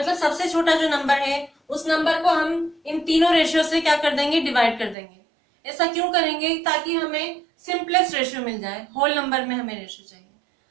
सबसे छोटा जो नंबर है, उस नंबर को हम इन तीनों रेशियो से क्या कर देंगे? डिवाइड कर देंगे। ऐसा क्यों करेंगे? ताकि हमें सिंपलेस्ट रेशियो मिल जाए। होल नंबर में हमें रेशियो चाहिए।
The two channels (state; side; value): drops out; left; at 5.0 s